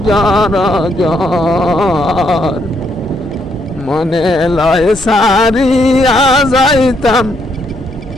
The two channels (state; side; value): normal; both; correlation 0.74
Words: জ্বর জ্বর মনে লয় সারিয়া যাইতাম